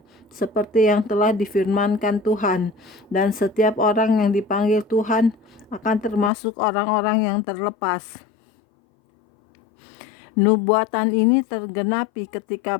seperti yang telah difirmankan Tuhan, dan setiap orang yang dipanggil Tuhan akan termasuk orang-orang yang terlepas. Nubuatan ini tergenapi ketika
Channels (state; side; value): drops out; right; at 6.3 s